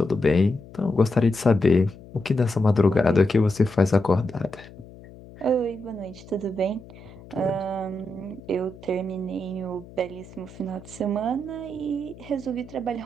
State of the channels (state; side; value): noise; left; hum, 19 dB below the sound